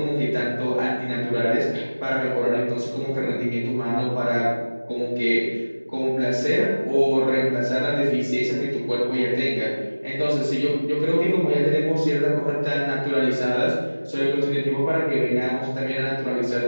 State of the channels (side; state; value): both; inverted; correlation -1.00